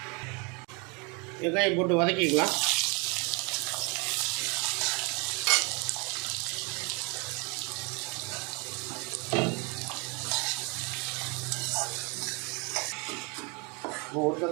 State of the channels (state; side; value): quieter; left; 31.0 dB